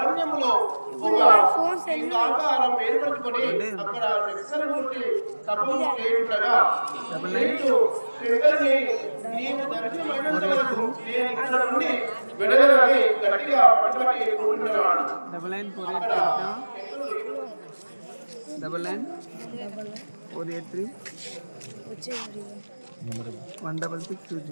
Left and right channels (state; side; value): inverted; both; correlation -1.00